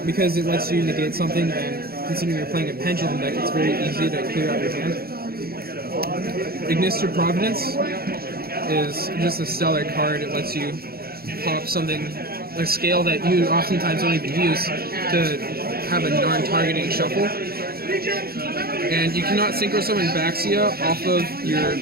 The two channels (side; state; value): left; late; 0.44 ms